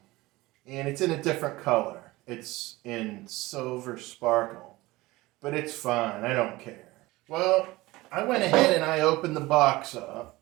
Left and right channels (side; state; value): left; quieter; 20.0 dB